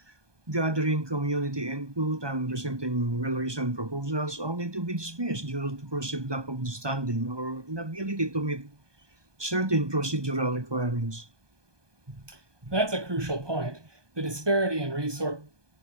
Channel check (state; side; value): late; left; 1.2 ms